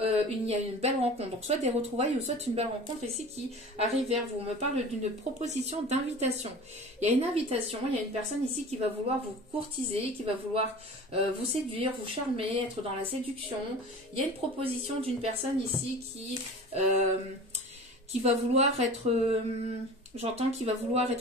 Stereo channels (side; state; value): both; normal; correlation 0.38